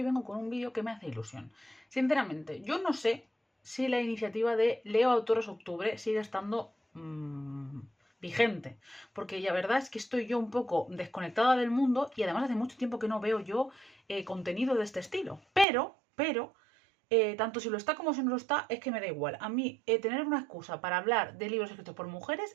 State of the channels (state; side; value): drops out; left; at 15.7 s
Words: vengo con un vídeo que me hace ilusión. Sinceramente, yo no sé si la iniciativa de Leo Autores Octubre sigue estando vigente, porque la verdad es que estoy yo un poco desconectada del mundo y además hace mucho tiempo que no veo yo contenido de este estilo. Pero tanto si lo está como si no lo está, es que me da igual. A mí, tener una excusa para hablar de libros escritos por